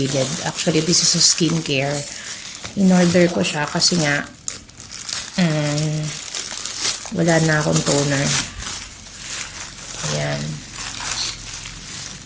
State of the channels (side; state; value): both; identical; correlation 1.00